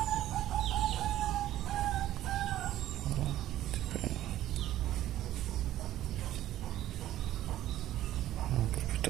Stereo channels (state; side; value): quieter; left; 13.5 dB